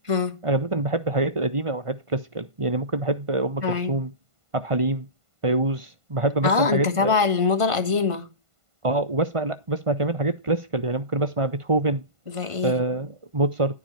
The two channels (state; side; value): late; left; 1.5 ms